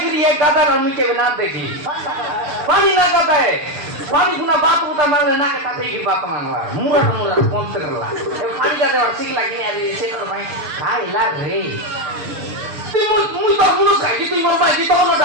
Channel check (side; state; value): left; late; 6.8 ms